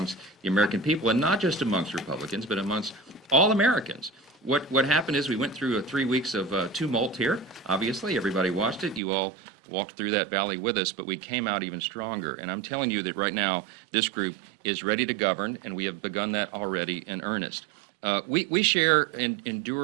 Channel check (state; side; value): drops out; left; at 9.0 s